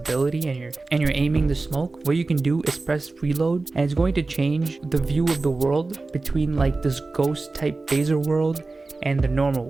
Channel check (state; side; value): quieter; left; 3.5 dB